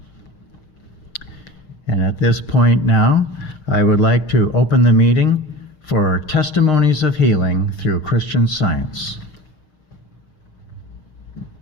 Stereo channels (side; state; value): right; late; 6.5 ms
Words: And at this point now, I would like to open the meeting for Testimonies of Healing through Christian Science.